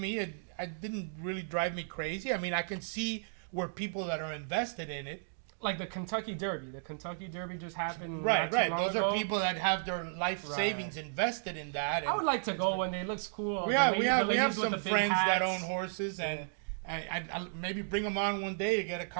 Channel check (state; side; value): silent; left; digital silence